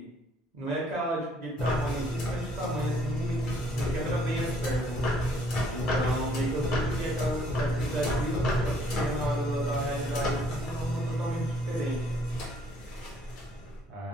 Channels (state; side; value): normal; both; correlation 0.64